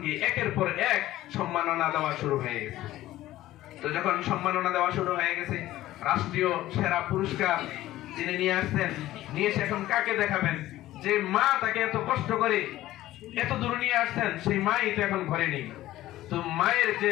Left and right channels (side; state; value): right; quieter; 15.2 dB